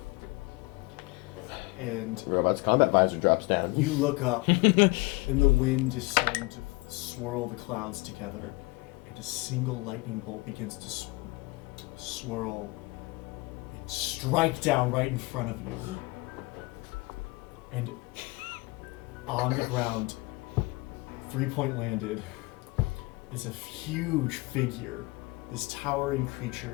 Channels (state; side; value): quieter; right; 24.1 dB